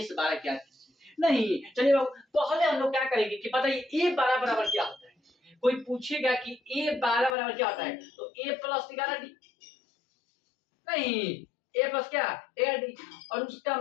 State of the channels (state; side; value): drops out; right; at 7.4 s